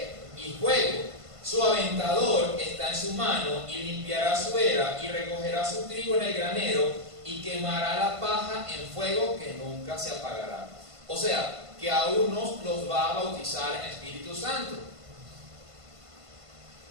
Y fuego. Su aventador está en su mano, y limpiará su era, y recogerá su trigo en el granero, y quemará la paja en fuego que nunca se apagará. O sea, que a unos los va a bautizar en Espíritu Santo,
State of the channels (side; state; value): left; late; 1.5 ms